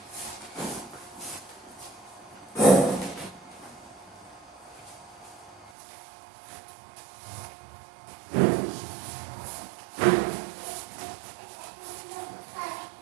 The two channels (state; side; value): drops out; left; at 5.7 s